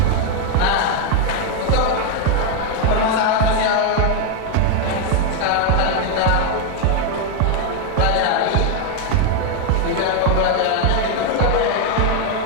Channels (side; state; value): both; different; correlation 0.01